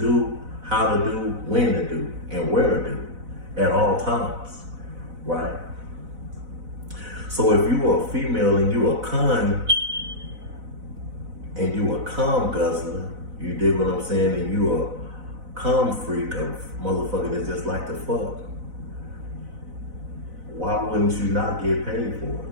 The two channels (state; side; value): late; left; 4.0 ms